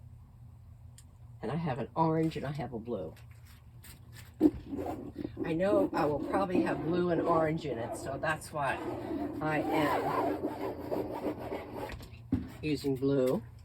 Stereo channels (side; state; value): both; identical; correlation 1.00